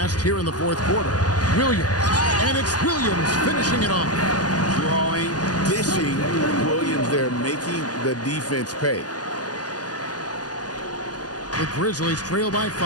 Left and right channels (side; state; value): right; late; 0.68 ms